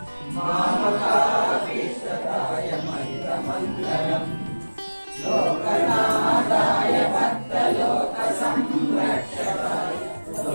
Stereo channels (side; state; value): both; inverted; correlation -1.00